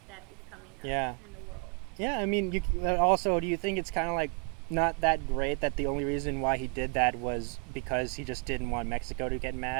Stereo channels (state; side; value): quieter; left; 35.4 dB